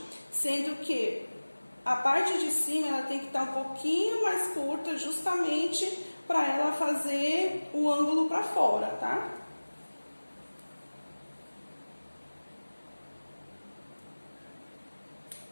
sendo que a parte de cima ela tem que estar um pouquinho mais curta, justamente para ela fazer o ângulo para fora, tá?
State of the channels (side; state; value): both; inverted; correlation -1.00